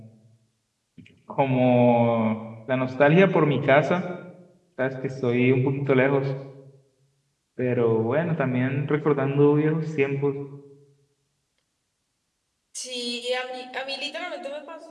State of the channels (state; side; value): identical; both; correlation 1.00